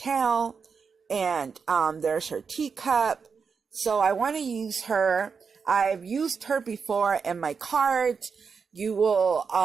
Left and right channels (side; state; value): left; quieter; 5.7 dB